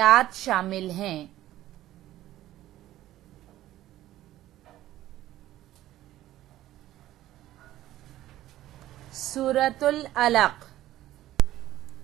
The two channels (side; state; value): left; quieter; 14.3 dB